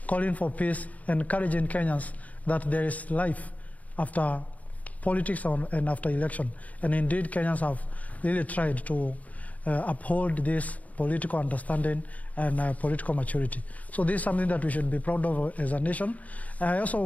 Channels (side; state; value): right; late; 0.072 ms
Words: calling for peace, encouraging Kenyans that there is life after politics and after election. And indeed, Kenyans have really tried to uphold this political understanding and political maturity. So this is something that we should be proud of as a nation. I also